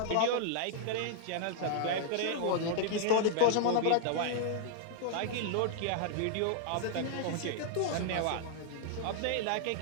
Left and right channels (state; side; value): different; both; correlation -0.01